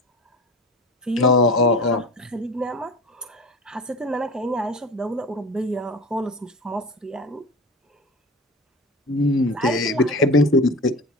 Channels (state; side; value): normal; both; correlation 0.32